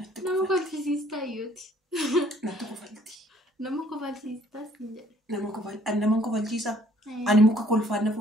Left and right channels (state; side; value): normal; both; correlation 0.60